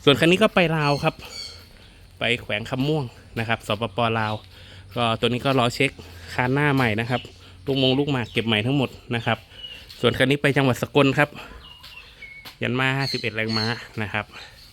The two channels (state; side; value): identical; both; correlation 1.00